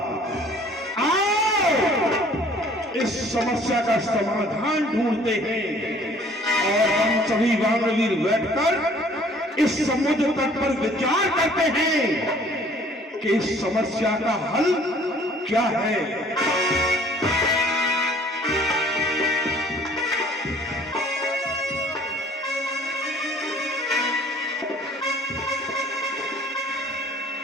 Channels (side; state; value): both; normal; correlation 0.55